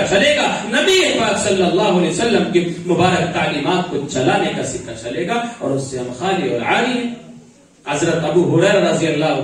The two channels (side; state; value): both; identical; correlation 1.00